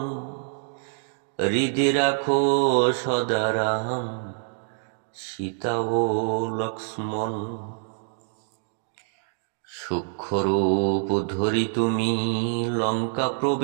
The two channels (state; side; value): silent; left; digital silence